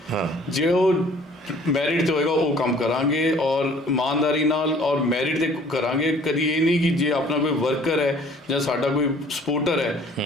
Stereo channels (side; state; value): both; normal; correlation 0.54